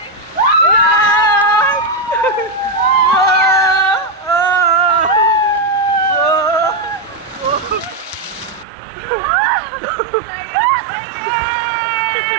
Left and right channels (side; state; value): left; drops out; at 8.7 s